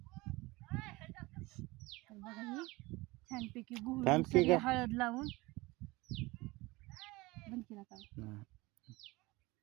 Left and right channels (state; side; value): quieter; left; 22.0 dB